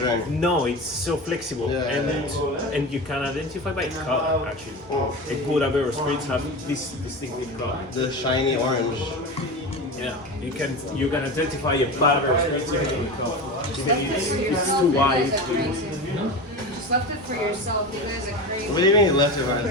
drink. no, it's so flexible, and you can identify by color. Actually, a good Aperol spritz have this distinctive color. The shiny orange. Yeah, you can identify a bad Aperol spritz by the color. Even if it's too wide. Just left it for yourself. You guys are crazy. What do you mean you left it right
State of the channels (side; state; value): both; normal; correlation 0.26